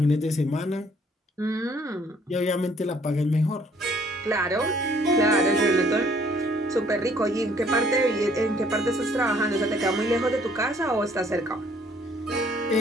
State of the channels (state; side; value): normal; both; correlation 0.61